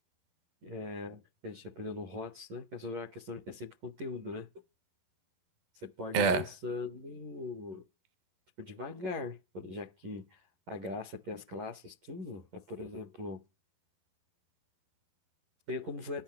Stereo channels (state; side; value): late; left; 12 ms